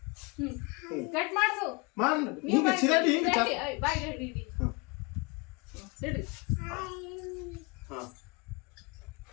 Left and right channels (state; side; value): quieter; right; 27.8 dB